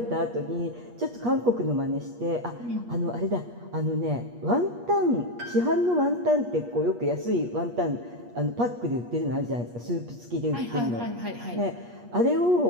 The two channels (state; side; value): late; left; 8.4 ms